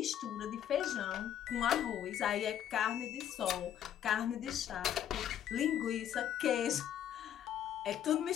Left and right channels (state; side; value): quieter; right; 10.3 dB